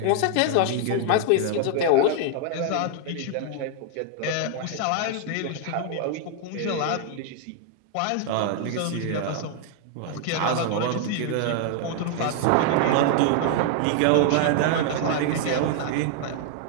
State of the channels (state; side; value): different; both; correlation -0.01